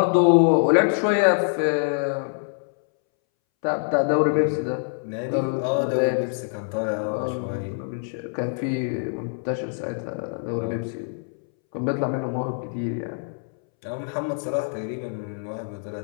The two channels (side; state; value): right; silent; 62 dB below the other